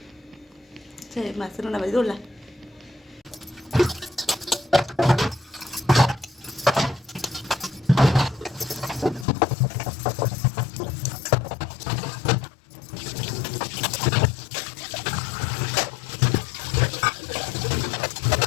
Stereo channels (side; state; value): right; drops out; at 9.2 s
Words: बासन गुड़ा माजी ओला